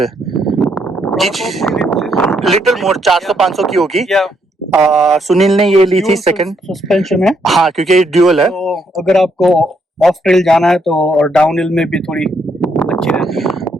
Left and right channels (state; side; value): normal; both; correlation 0.74